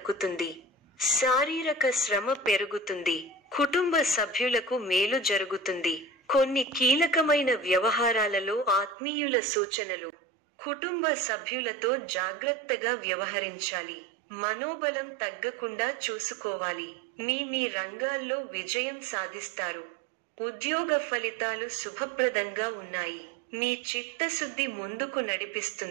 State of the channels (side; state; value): left; drops out; at 9.0 s